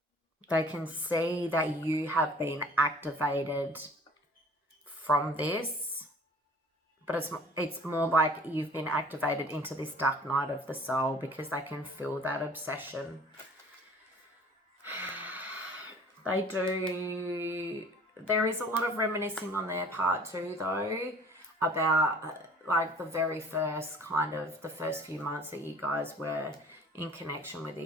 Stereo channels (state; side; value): normal; both; correlation 0.50